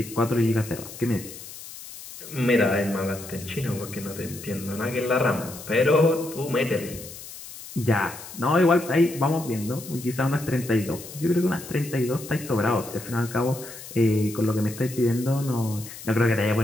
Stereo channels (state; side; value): noise; left; hiss, 14 dB below the sound